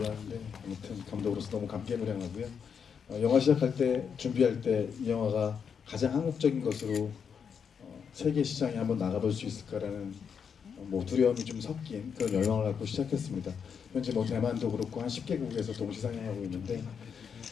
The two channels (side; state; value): right; quieter; 6.8 dB